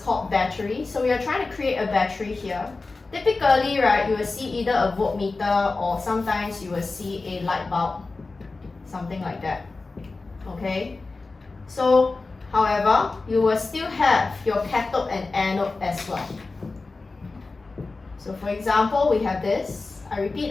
called battery. So we are trying to create a battery here. Typically, right, you will see either a voltmeter or sometimes you will see a light bulb. Something like that. Okay? So, however, you will still have your cathode and anode as well. So for example, we have this. I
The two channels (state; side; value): quieter; right; 3.7 dB